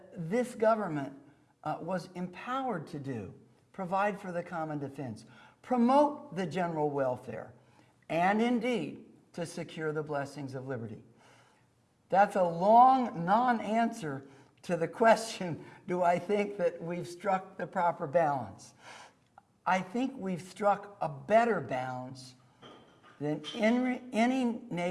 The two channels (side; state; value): both; identical; correlation 1.00